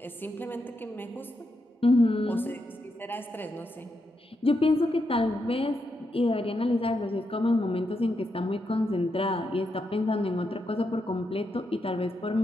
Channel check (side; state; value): both; normal; correlation 0.83